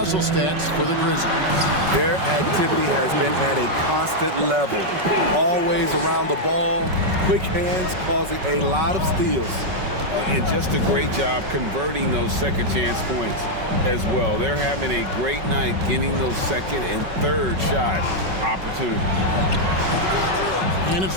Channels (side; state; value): left; late; 5.3 ms